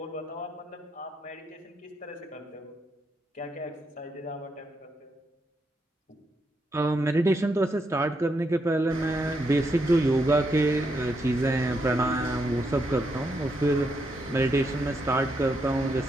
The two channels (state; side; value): normal; both; correlation 0.80